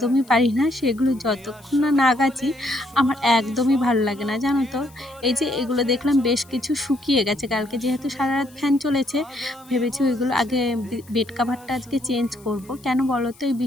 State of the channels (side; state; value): left; noise; hiss, 26 dB below the sound